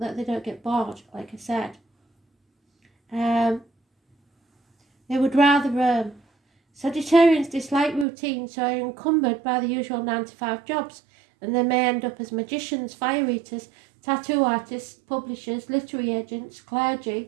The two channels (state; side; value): drops out; left; at 8.1 s